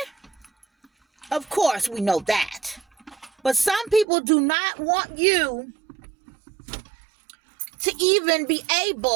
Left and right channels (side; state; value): left; drops out; at 4.0 s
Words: Of course, we know that. But some people do not want you to even be